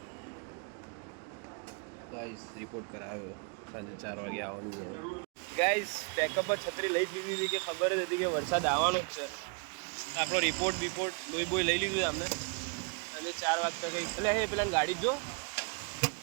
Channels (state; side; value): quieter; left; 36.3 dB